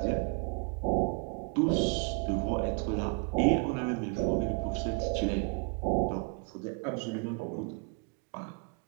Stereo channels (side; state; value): left; quieter; 35.5 dB